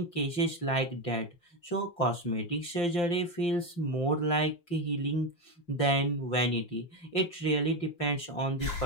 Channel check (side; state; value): right; late; 5.8 ms